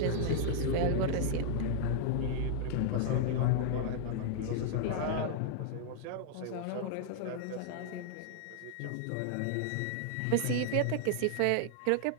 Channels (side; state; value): both; different; correlation -0.01